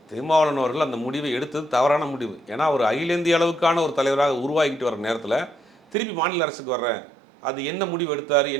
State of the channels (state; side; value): drops out; left; at 6.0 s